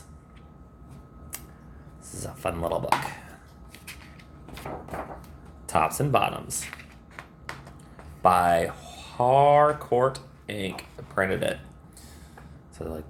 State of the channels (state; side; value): identical; both; correlation 1.00